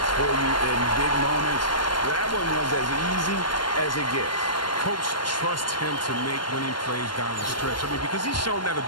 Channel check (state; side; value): late; right; 0.72 ms